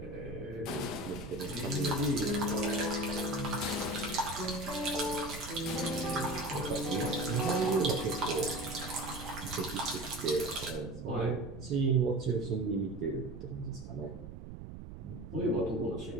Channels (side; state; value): right; noise; rumble, 11 dB below the sound